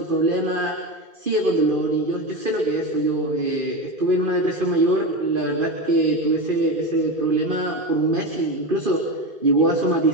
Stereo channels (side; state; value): left; late; 2.5 ms